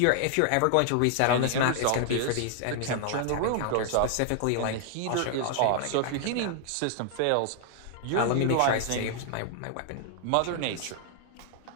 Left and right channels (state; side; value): different; both; correlation 0.00